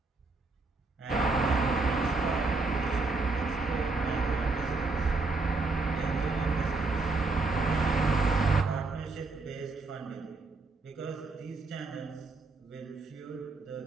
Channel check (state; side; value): quieter; left; 3.7 dB